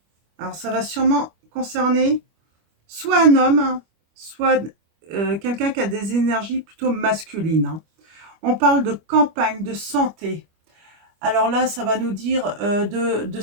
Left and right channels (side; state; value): left; late; 25 ms